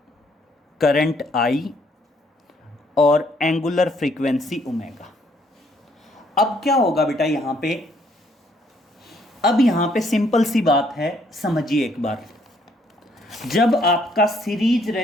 करंट आई और एंगुलर फ्रीक्वेंसी ओमेगा। अब क्या होगा बेटा यहाँ पे, अब यहाँ पे सिंपल सी बात है, समझिए एक बार। जब आपका सीरीज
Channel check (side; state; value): both; normal; correlation 0.68